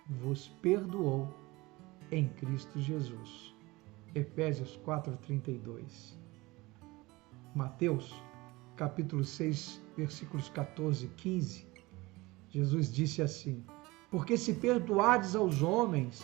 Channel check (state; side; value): quieter; left; 21.7 dB